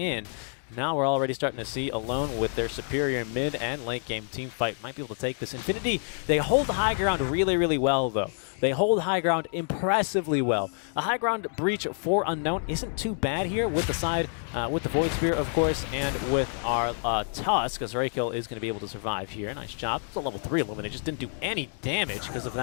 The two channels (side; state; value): right; silent; 59 dB below the other